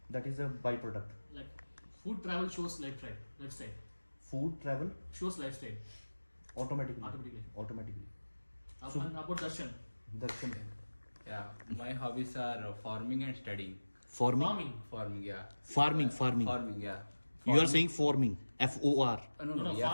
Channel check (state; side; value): inverted; both; correlation -1.00